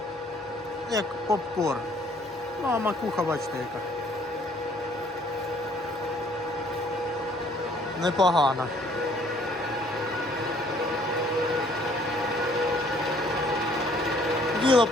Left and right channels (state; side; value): normal; both; correlation 0.60